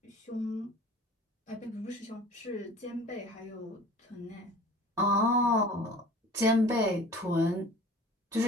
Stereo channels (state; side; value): normal; both; correlation 0.44